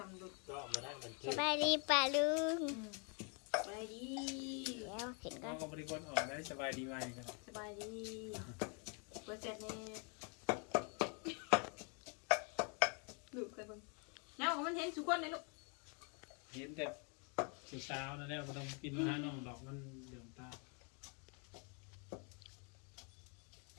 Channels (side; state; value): right; quieter; 36.9 dB